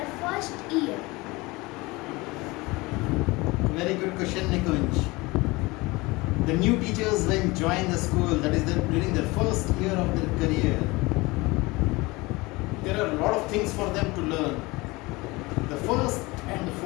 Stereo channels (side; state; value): right; quieter; 22.9 dB